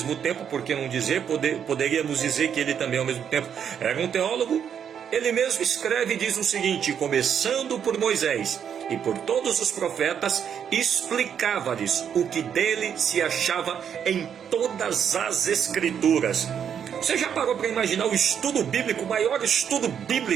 tempo, por que não dizer, poderíamos dizer que ele também ao mesmo tempo era um teólogo, ele mesmo escreve e diz o seguinte: começando por Moisés e por todos os profetas, explicava-lhes o que dele se achava em todas as escrituras. Você já parou para imaginar o estudo bíblico, o maior estudo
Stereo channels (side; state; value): left; quieter; 8.2 dB